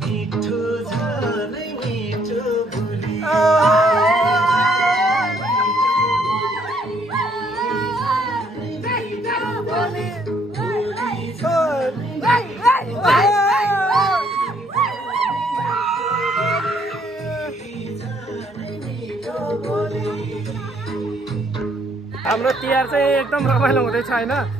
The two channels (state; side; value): normal; both; correlation 0.67